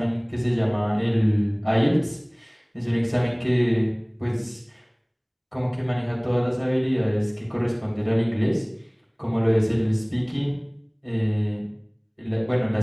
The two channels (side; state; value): both; identical; correlation 1.00